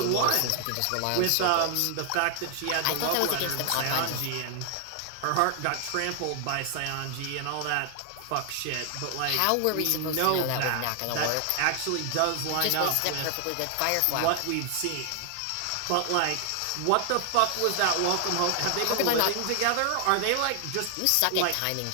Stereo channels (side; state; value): both; different; correlation 0.00